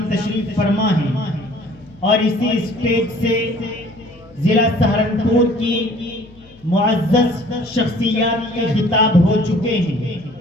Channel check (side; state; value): left; noise; hum, 27 dB below the sound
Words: تشریف فرما ہیں اور اسی اسٹیج سے ضلع سہارنپور کی معزز شخصیات کے خطاب ہو چکے ہیں۔